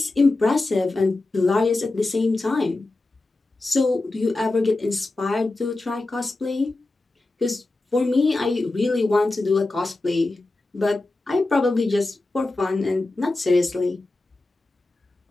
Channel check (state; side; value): quieter; right; 3.0 dB